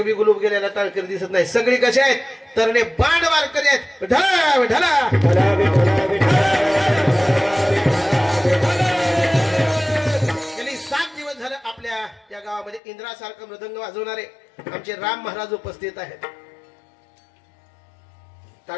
बी गुलूब गेलेला टाळकरी दिसत नाही. सगळी कसे आहेत तरणे बाण वारकरी आहेत. ढला विठला गेली 7 दिवस झालं आपल्या या गावामध्ये इंद्रासारखं मृदंग वाजवणारे आमचे राम महाराज उपस्थित आहेत.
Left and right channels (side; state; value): right; drops out; at 12.8 s